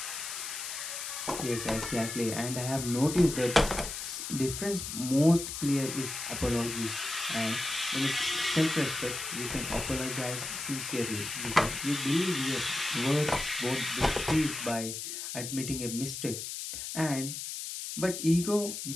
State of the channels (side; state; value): left; noise; hiss, 6 dB below the sound